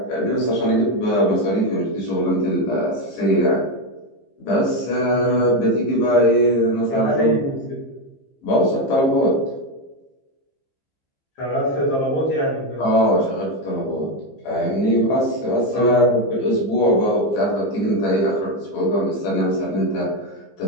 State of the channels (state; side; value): late; right; 15 ms